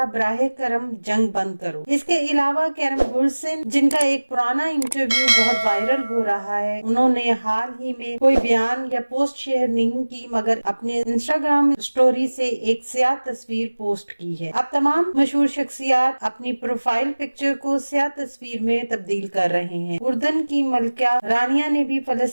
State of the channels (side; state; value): both; inverted; correlation -1.00